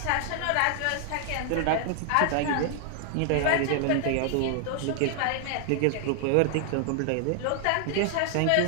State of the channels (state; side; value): different; both; correlation 0.00